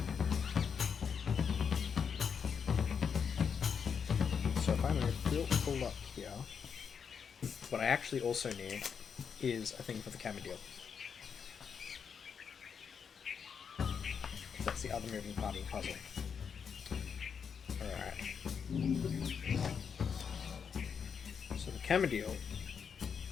So if I'm going to full up here, what I actually also need is a thing for the camera deal. That's the other moving part of the puzzle. Alright. So the camera deal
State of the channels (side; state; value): right; quieter; 6.7 dB